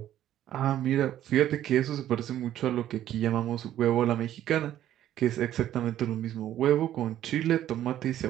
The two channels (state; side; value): quieter; left; 12.0 dB